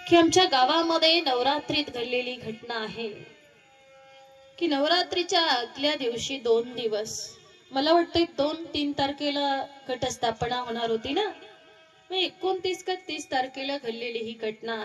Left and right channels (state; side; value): identical; both; correlation 1.00